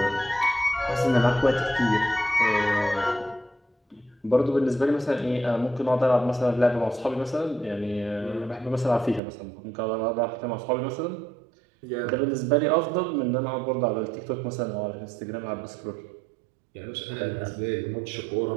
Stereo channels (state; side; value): drops out; left; at 9.2 s